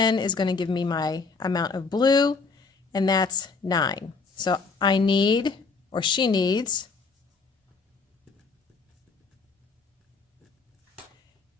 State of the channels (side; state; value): right; quieter; 4.5 dB